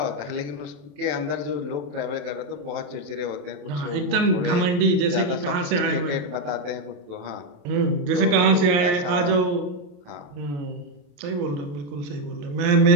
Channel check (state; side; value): late; left; 28 ms